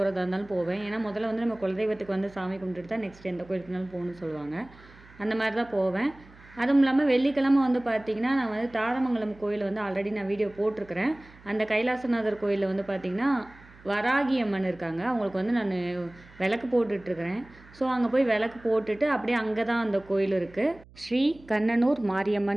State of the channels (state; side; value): noise; right; hum, 24 dB below the sound